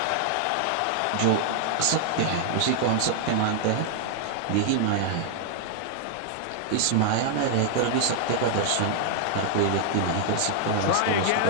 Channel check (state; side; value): different; both; correlation -0.01